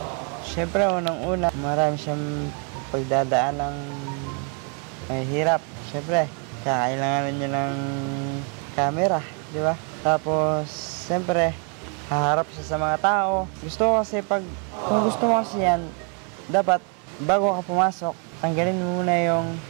Siyempre, unang-una, marami siyang pagdadaan ng mahirap. Siyempre, kakailanganan niya ng camera, di ba? Tapos, siyempre, haharap siya sa mga tao. Kung gusto mo kasi yan, dapat, bago ka pumasok, tanggalin mo muna yung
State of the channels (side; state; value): left; quieter; 38.8 dB